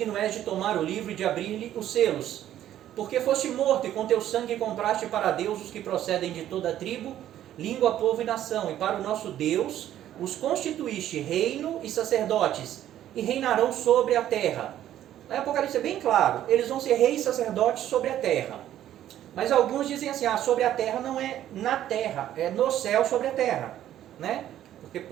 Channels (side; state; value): left; quieter; 11.9 dB